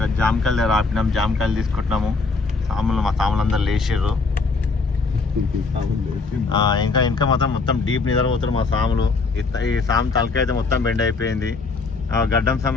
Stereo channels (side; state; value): right; quieter; 4.1 dB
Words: జామకాయలు దగ్గర ఆపినాం. జామకాయలు తీసుకుంటున్నాము. మా సాములు అందరు లేచిర్రు. ఇంకా మొత్తం డీప్ నిద్రపోతారు మా సాములు. ఈ సాము తలకాయ అయితే మొత్తం బెండ్ అయిపోయింది. గడ్డం సాము